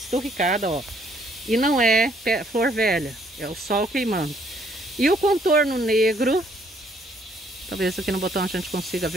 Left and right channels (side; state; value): both; normal; correlation 0.66